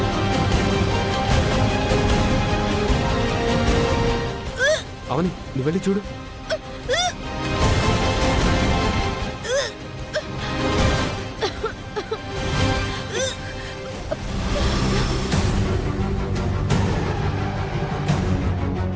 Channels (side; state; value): both; identical; correlation 1.00